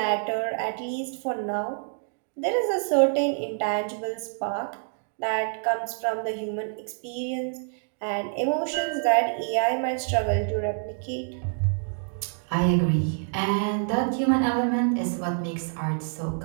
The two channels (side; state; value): left; silent; 60 dB below the other